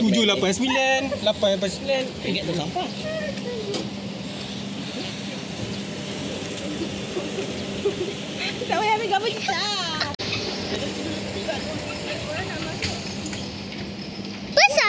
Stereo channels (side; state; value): both; identical; correlation 1.00